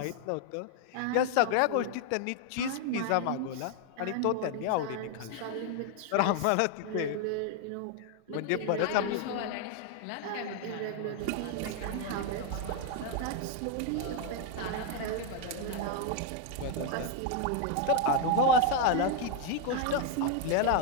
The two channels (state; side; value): different; both; correlation 0.01